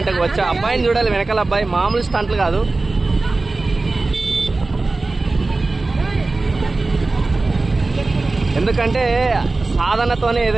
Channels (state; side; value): quieter; left; 3.4 dB